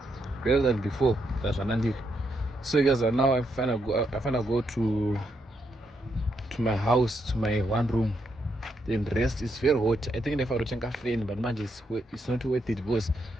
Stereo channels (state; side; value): normal; both; correlation 0.79